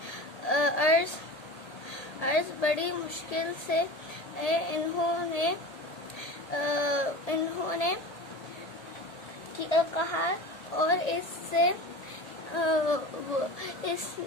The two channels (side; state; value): right; late; 1.8 ms